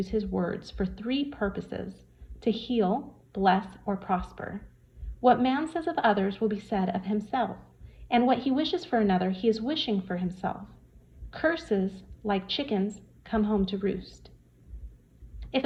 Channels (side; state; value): both; identical; correlation 1.00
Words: his words for 3 purposes: to heal, bless, or prosper. What man says of others will be said of himself, and what he wishes for another he is wishing for himself. Curses, like chickens, come home to roost. If